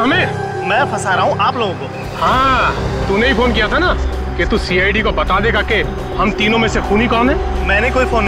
मैं फंसा रहा हूँ आप लोगों को। हाँ, तूने ही फोन किया था ना कि तू सीआईडी को बता देगा कि हम तीनों में से खूनी कौन है। मैंने कोई फोन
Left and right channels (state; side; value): identical; both; correlation 1.00